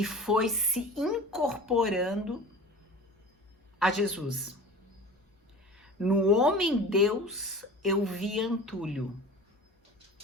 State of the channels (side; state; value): both; normal; correlation 0.37